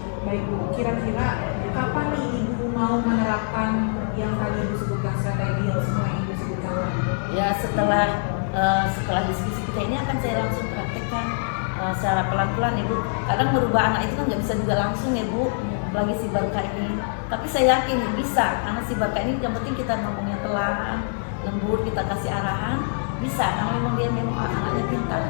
baik Bu, kira-kira kapan nih Ibu mau menerapkan yang tadi Ibu sebutkan, strategi yang semua yang Ibu sebutkan? Ya setelah diskusi kita ini akan saya langsung praktekkan secara pelan-pelan Ibu. Kadang merubah anak itu kan nggak bisa juga langsung ya Bu, apalagi si Barka ini. Tapi saya yakin bisa, karena si Barka ini yang penting kita ngomongnya pelan, lembut, kita kasih arahan, bisa. Karena memang dia memang anaknya pintar.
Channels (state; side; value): silent; right; 59 dB below the other